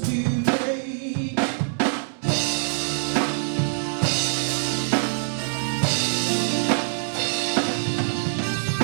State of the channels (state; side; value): silent; left; digital silence